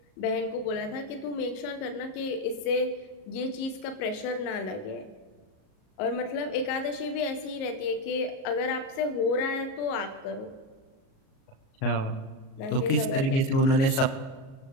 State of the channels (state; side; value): late; right; 37 ms